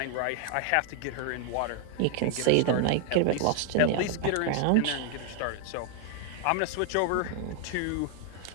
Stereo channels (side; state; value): both; different; correlation 0.00